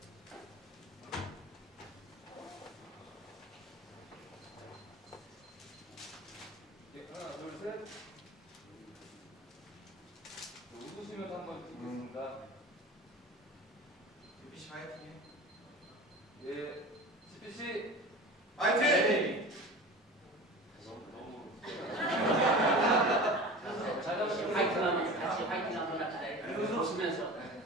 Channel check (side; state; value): both; normal; correlation 0.35